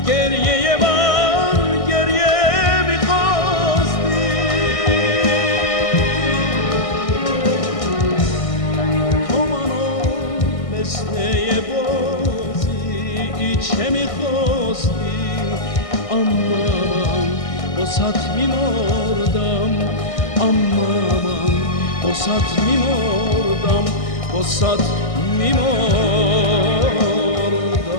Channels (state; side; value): late; right; 1.6 ms